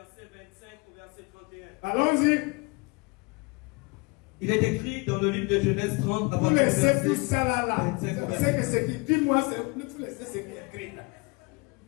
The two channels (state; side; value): quieter; right; 28.3 dB